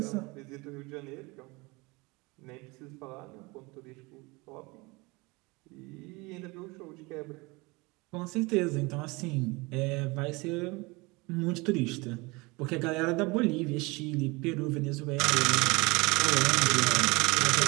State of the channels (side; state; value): left; quieter; 25.2 dB